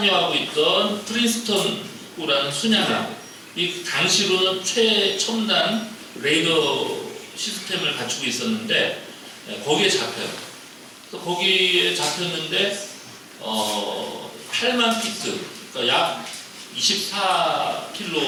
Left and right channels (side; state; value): both; identical; correlation 1.00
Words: 있던 프린스턴이라는 순양함, 이 당시로는 최첨단 레이더 시스템을 갖추고 있었는데 거기에 잡혀요. 그래서 거기에 잡혔는데 8만 피트, 그러니까 약